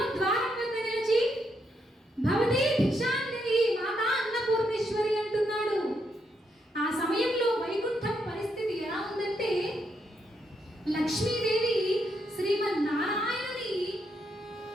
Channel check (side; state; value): both; normal; correlation 0.79